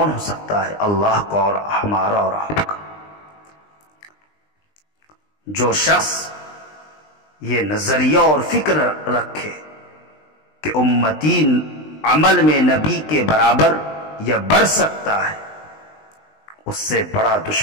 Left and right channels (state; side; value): late; right; 20 ms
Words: ہو سکتا ہے؟ اللہ کا اور ہمارا اور آپ کا۔ جو شخص یہ نظریہ اور فکر رکھے کہ امتی عمل میں نبی کے برابر یا بڑھ سکتا ہے، اس سے بڑا